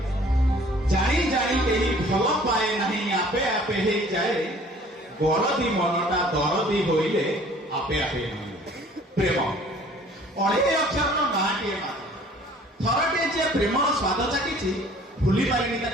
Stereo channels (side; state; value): both; normal; correlation 0.53